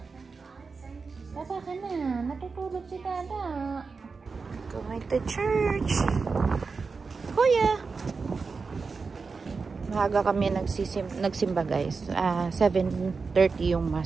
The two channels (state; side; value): quieter; left; 4.7 dB